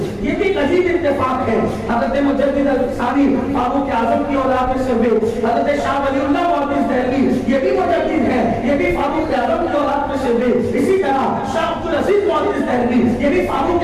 یہ بھی عجیب اتفاق ہے، حضرت مجدد ثانی فاروق اعظم کی اولاد میں سے ہوئے، حضرت شاہ ولی اللہ محدث دہلوی یہ بھی مجدد ہے، یہ بھی فاروق اعظم کی اولاد میں سے ہوئے۔ اسی طرح شاہ عبدالعزیز محدث دہلوی یہ بھی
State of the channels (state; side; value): identical; both; correlation 1.00